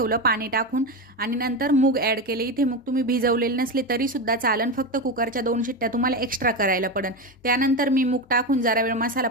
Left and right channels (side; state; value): both; normal; correlation 0.16